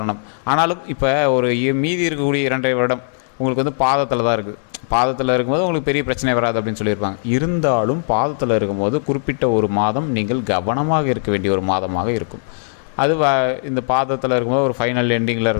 ஆனாலும் இப்போ ஒரு மீதி இருக்கக்கூடிய 2.5 வருடம் உங்களுக்கு வந்து பாதத்தில் தான் இருக்குது. பாதத்தில் இருக்கும்போது உங்களுக்கு பெரிய பிரச்சனை வராது அப்படின்னு சொல்லியிருப்பாங்க. இருந்தாலும் பாதத்தில் இருக்கும்போது குறிப்பிட்ட ஒரு மாதம் நீங்கள் கவனமாக இருக்க வேண்டிய ஒரு மாதமாக இருக்கும். அது இந்த பாதத்தில் இருக்கும்போது ஒரு ஃபைனல் எண்டிங்கில்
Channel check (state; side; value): silent; right; digital silence